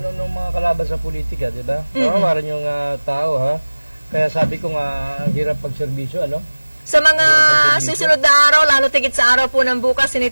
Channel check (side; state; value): both; inverted; correlation -1.00